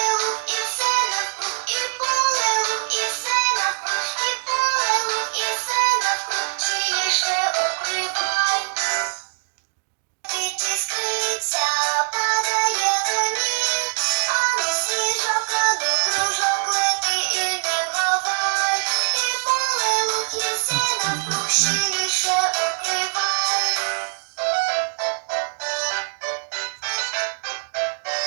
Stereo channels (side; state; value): left; silent; digital silence